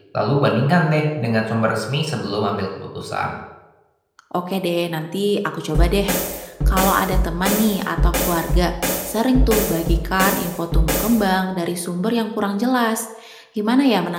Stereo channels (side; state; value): both; identical; correlation 1.00